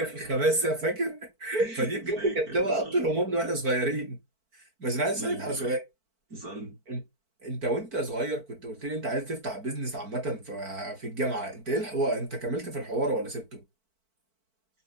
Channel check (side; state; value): left; late; 4.5 ms